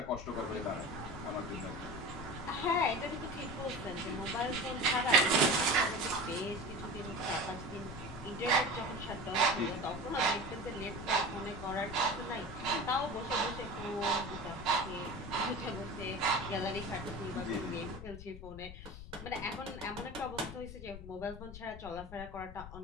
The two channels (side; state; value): left; noise; rumble, 12 dB below the sound